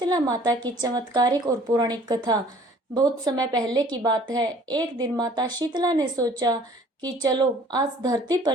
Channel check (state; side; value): normal; both; correlation 0.53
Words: माता की चमत्कारिक और पौराणिक कथा। बहुत समय पहले की बात है। एक दिन माता शीतला ने सोचा कि चलो आज धरती